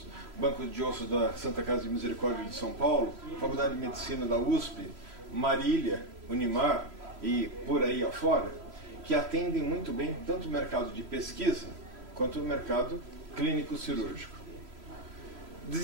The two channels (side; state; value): left; late; 3.0 ms